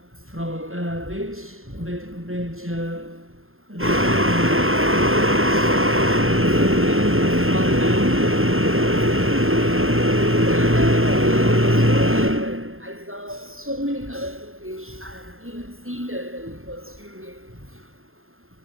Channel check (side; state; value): left; late; 0.61 ms